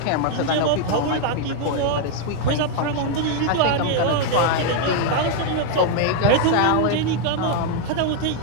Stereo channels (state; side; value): different; both; correlation 0.00